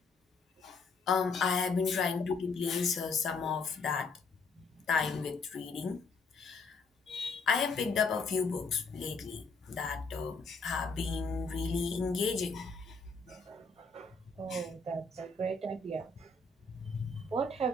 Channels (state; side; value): quieter; right; 3.9 dB